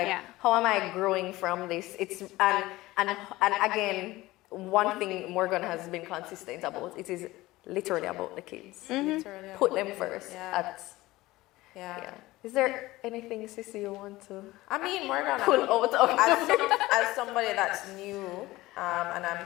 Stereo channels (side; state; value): right; quieter; 18.6 dB